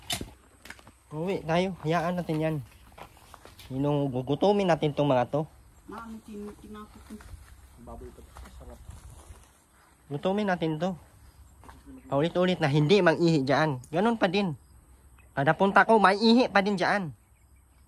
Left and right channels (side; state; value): both; identical; correlation 1.00